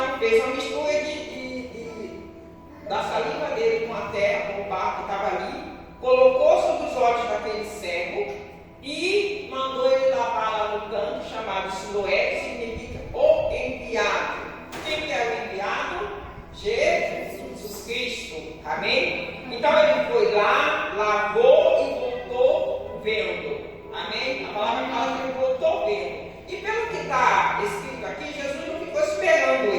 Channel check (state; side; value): identical; both; correlation 1.00